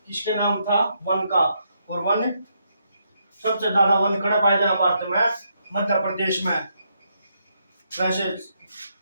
किसके नाम था? वन का। और वन सबसे ज्यादा वन कहाँ पाए जाए भारत में? मध्य प्रदेश में। वैसे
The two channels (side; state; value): both; inverted; correlation -0.77